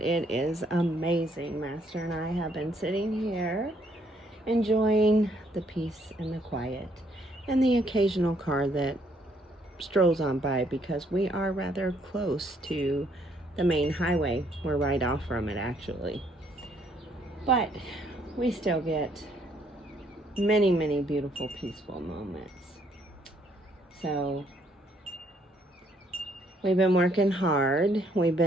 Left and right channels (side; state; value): both; normal; correlation 0.68